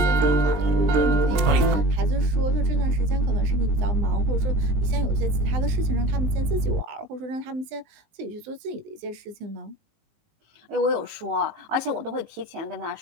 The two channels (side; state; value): left; late; 19 ms